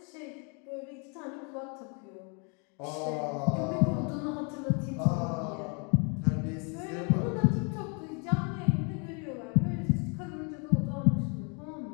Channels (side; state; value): right; quieter; 36.0 dB